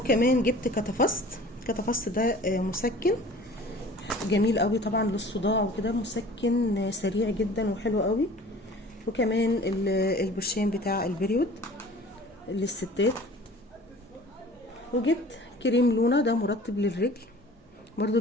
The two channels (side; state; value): both; normal; correlation 0.46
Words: جبت كتافست ده مسكن جميل قوي طبعا للصداع وكده، مسكن سريع جدا وحلو قوي. وكمان البرشام بتاع البريود للستات. وجبت كريم لونا ده مرطب للرجل برضو